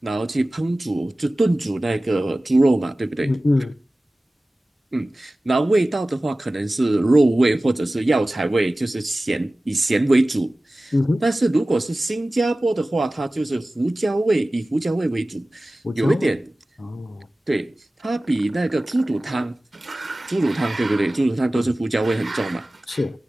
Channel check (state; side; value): normal; both; correlation 0.97